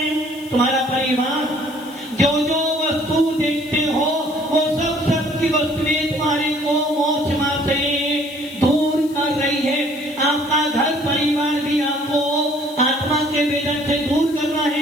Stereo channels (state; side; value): noise; left; hiss, 21 dB below the sound